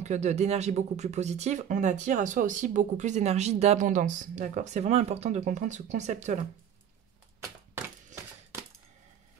d'énergie beaucoup plus positive, on attire à soi aussi beaucoup plus d'énergie d'abondance. D'accord? C'est vraiment important de comprendre ce concept-là.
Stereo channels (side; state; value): left; quieter; 9.0 dB